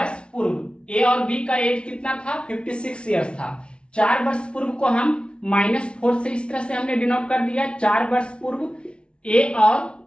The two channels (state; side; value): late; right; 0.058 ms